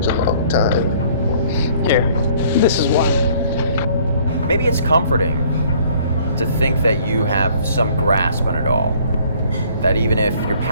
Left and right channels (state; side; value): inverted; both; correlation -0.58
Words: a long time. Here, this is why. Maybe it's comforting to think that you have some grasp on it all. That even if you're